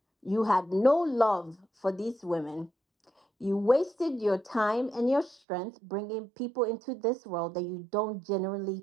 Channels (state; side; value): drops out; left; at 5.4 s